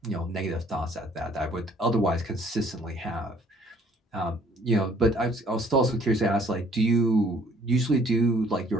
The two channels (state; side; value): normal; both; correlation 0.59